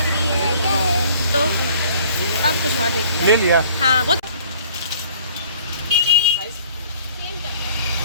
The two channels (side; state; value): both; inverted; correlation -0.55